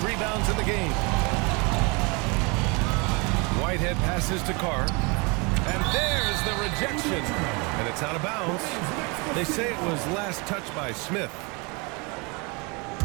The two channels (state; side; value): quieter; left; 29.8 dB